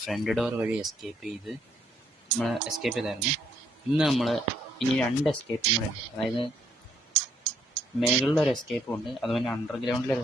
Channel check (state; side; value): normal; both; correlation 0.71